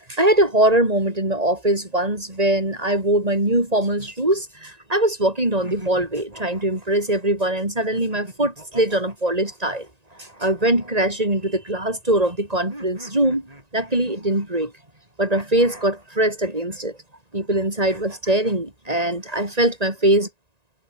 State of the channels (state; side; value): late; left; 1.9 ms